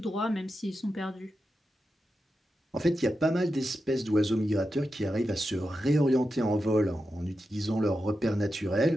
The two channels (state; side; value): normal; both; correlation 0.89